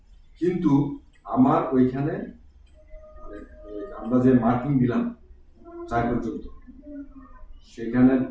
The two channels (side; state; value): both; identical; correlation 1.00